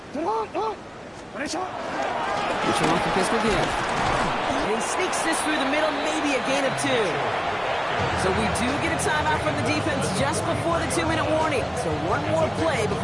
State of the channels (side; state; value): both; identical; correlation 1.00